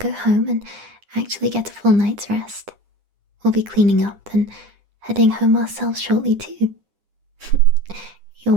home and actually get a full night's rest. We'll be cleaning up and heading home ourselves shortly too. You're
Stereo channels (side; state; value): left; late; 9.9 ms